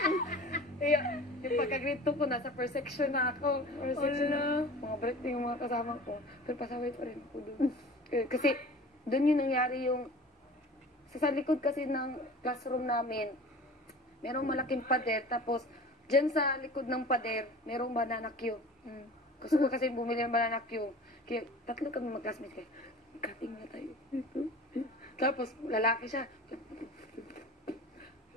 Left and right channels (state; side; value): normal; both; correlation 0.40